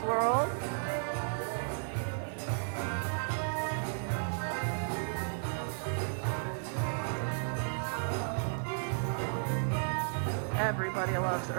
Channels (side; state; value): left; silent; digital silence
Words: world. Everybody loves